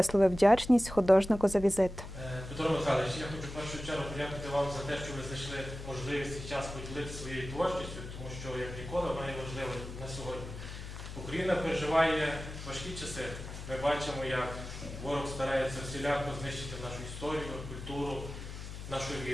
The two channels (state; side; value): noise; left; hum, 10 dB below the sound